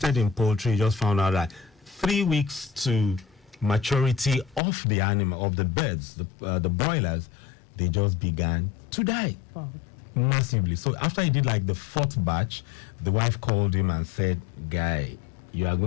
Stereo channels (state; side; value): drops out; right; at 4.6 s